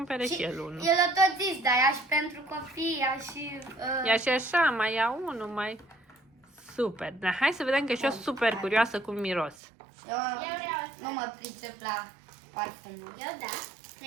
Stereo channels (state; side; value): drops out; left; at 9.6 s